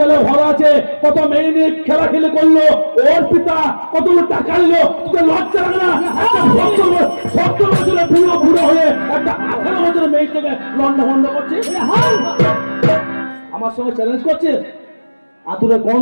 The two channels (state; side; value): inverted; both; correlation -1.00